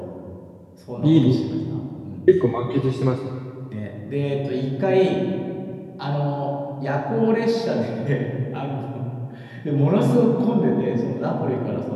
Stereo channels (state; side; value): identical; both; correlation 1.00